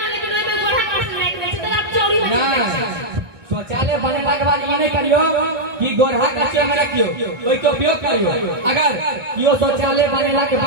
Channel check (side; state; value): left; late; 1.6 ms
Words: शौचालय बनेला के बाद ये नहीं करियो कि गोरहा कच्चे में रखियो कोई के उपयोग करियो अगर कियो शौचालय बनेला के